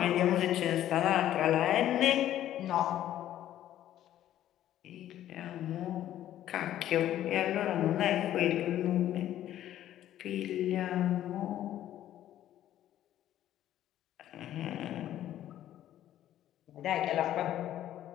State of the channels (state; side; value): quieter; right; 12.3 dB